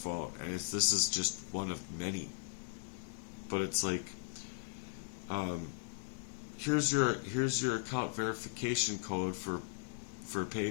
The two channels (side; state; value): right; silent; 53 dB below the other